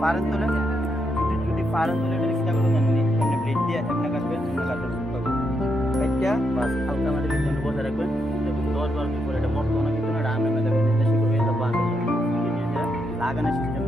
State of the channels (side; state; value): both; normal; correlation 0.80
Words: পারেন তোলে, যদি পারেন তোলে এটা চেষ্টা করবেন এমনি এমনি প্লেট দিয়ে এমনি কাটবেন, এমনি কাটবেন একটা বাস হালকা মাটির জন্য বসে রাখবেন। দেখুন 10-12 দিন পরে এটা মরতো না, কিন্তু এটা আমি দেখবেন দেশে করে এটা বাস লাগানোর সিস্টেম